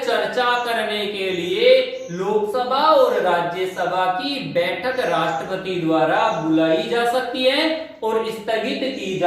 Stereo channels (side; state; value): both; identical; correlation 1.00